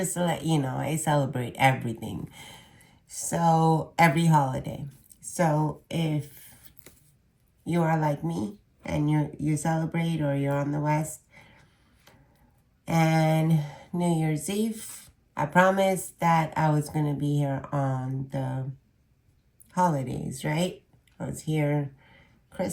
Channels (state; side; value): identical; both; correlation 1.00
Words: to let you know, I celebrate everything. So, every holiday. So, if you are like me and you celebrate or you're on the West, and New Year's Eve, I promised that I was going to be here on the holidays, right? I was here